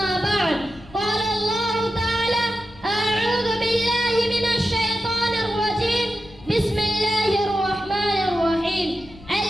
بعد، قال الله تعالى: أعوذ بالله من الشيطان الرجيم، بسم الله الرحمن الرحيم.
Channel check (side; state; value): left; noise; rumble, 21 dB below the sound